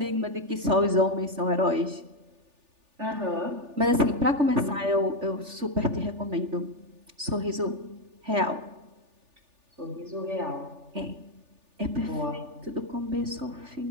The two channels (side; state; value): left; late; 3.4 ms